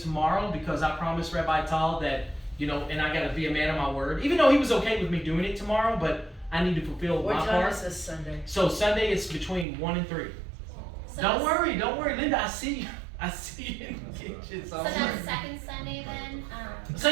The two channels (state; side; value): drops out; left; at 9.7 s